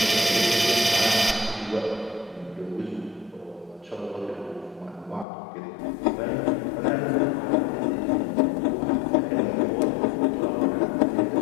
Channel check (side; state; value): right; drops out; at 5.2 s